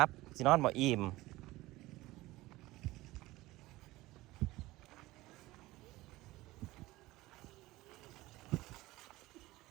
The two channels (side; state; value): left; quieter; 18.7 dB